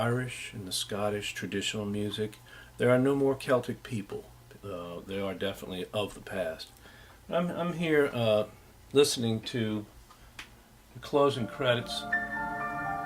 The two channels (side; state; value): both; identical; correlation 1.00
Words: and the Scottish traditional music. There are no more Celtic people. They are definitely of the past. I'm here listening to the closing credits.